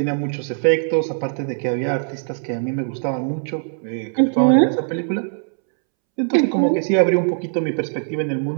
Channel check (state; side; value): silent; left; 65 dB below the other